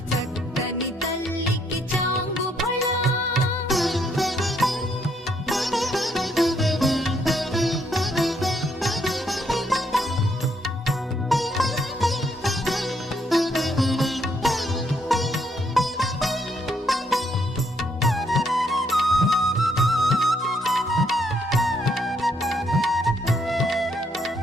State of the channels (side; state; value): both; normal; correlation 0.72